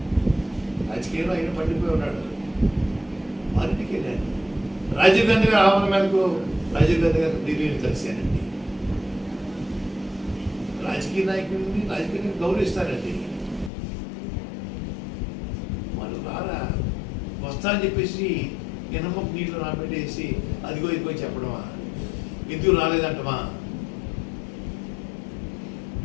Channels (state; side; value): drops out; right; at 13.7 s